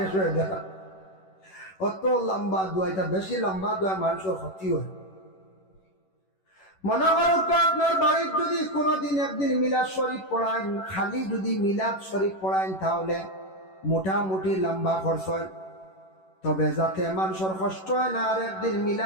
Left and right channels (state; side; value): late; right; 11 ms